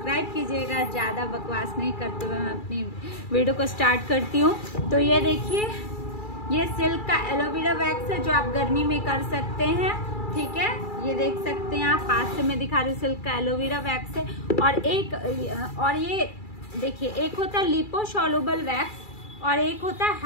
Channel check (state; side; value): late; right; 2.3 ms